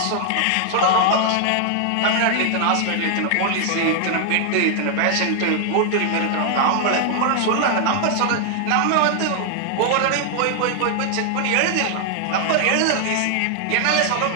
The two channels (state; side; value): different; both; correlation 0.00